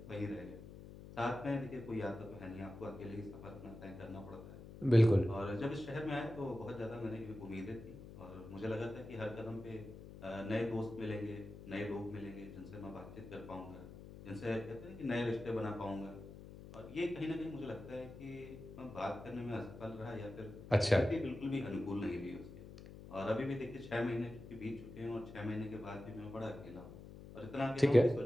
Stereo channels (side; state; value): left; noise; hum, 14 dB below the sound